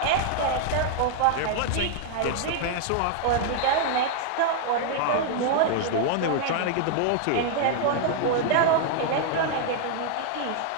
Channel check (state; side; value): different; both; correlation 0.00